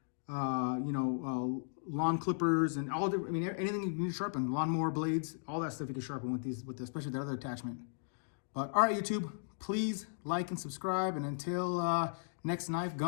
lawn clippers and all different. I mean, anything you need to sharpen, lawnmower blades, all that stuff you can sharpen with especially the other attachment. But all right, YouTube, please like and subscribe, and until next knife,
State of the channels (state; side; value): silent; right; digital silence